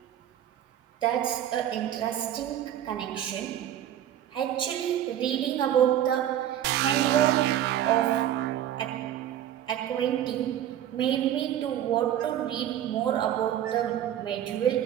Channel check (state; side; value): quieter; left; 11.3 dB